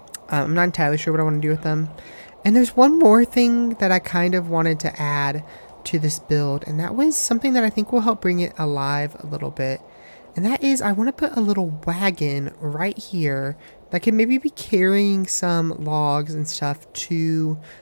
I'm not entirely sure what I want to do with them. And there's one more thing that I kind of wanted to add to this build, and that was something that I think will help bring it alive a little bit. And that is, I want to put a little wagon right here that can maybe be carrying some logs and stuff to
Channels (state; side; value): inverted; both; correlation -1.00